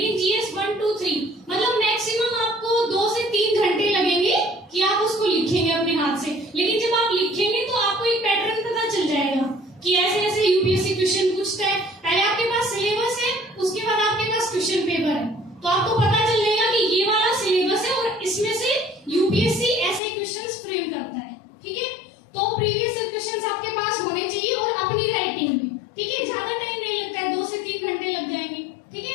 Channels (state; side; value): drops out; right; at 20.0 s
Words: जीएस 1, 2, 3 मतलब मैक्सिमम आपको 2 से 3 घंटे लगेंगे कि आप उसको लिखेंगे अपने हाथ से। लेकिन जब आप लिखेंगे तो आपको एक पैटर्न पता चल जाएगा कि ऐसे ऐसे यूपीएससी क्वेश्चन पूछता है। पहले आपके पास सिलेबस है, उसके बाद आपके पास क्वेश्चन पेपर है, तो आपको पता चल जाएगा कि ये वाला सिलेबस है और इसमें से यूपीएससी ऐसे क्वेश्चंस फ्रेम करता है, ठीक है। तो प्रीवियस क्वेश्चंस आपके पास होने चाहिए और अपनी राइटिंग में, ठीक है। ज्यादा टाइम नहीं लगता है, 2 से 3 घंटे लग जाएंगे, ठीक